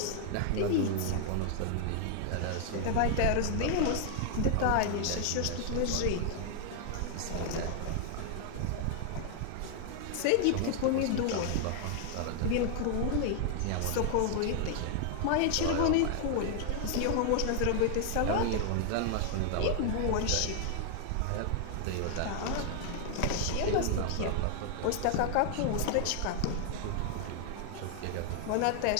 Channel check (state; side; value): different; both; correlation 0.00